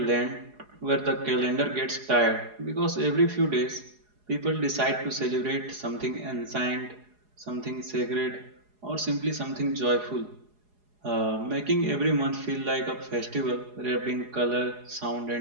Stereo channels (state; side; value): late; left; 4.8 ms